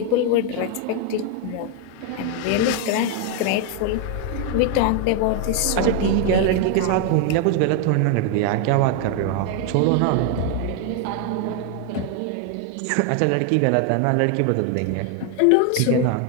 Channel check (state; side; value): different; both; correlation 0.01